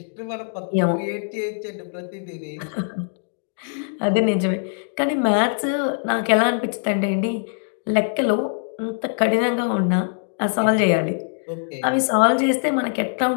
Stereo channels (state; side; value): silent; right; digital silence